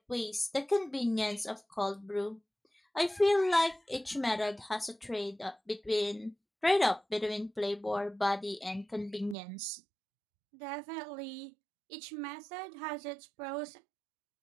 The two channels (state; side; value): drops out; left; at 9.3 s